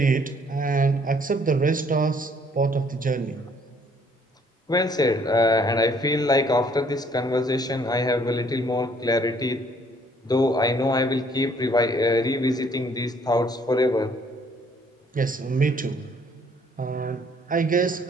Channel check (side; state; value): both; normal; correlation 0.62